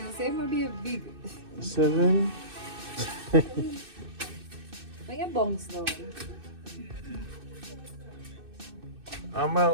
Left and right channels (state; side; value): late; left; 2.6 ms